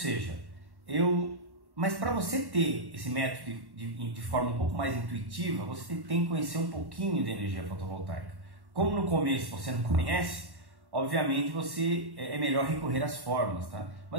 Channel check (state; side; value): late; left; 1.1 ms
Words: mas para você ter esse método de forma um pouco mais intuitiva, você tem que conhecer um pouquinho de energia fotovoltaica. Como no começo você não conhece, obviamente é melhor recorrer às fórmulas, tá?